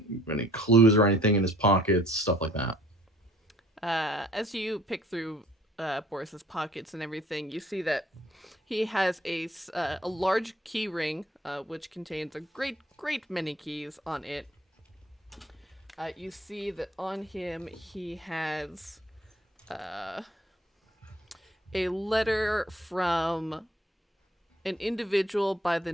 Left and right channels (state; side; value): normal; both; correlation 0.57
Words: clues or anything in his pockets, stuff like that. As you pick through Boris's pockets and everything, you see that he has a large key ring, which contains a great many keys on it. You see that on him he has a letter from an individual by the